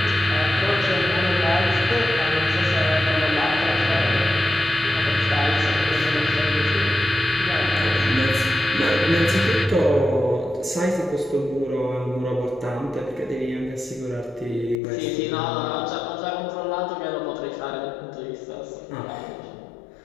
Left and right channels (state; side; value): drops out; right; at 14.8 s